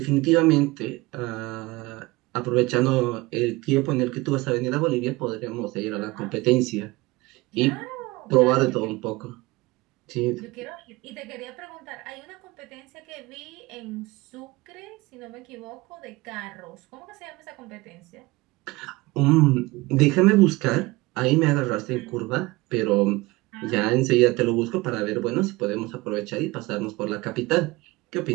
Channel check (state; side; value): quieter; left; 21.7 dB